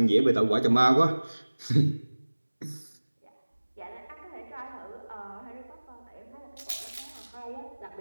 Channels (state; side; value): inverted; both; correlation -1.00